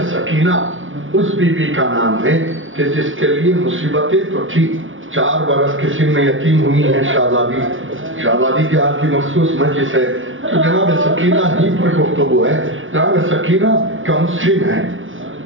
سکینہ اس بی بی کا نام ہے کہ جس کے لیے مصیبتیں تو تھی. 4 برس کے سن میں یتیم ہوئی ہیں. شہزادی کے حال کی مخصوص مجلس ہے تو جناب سکینہ ہی پر گفتگو ہے. جناب سکینہ کم سن ہیں،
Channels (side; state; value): left; late; 0.57 ms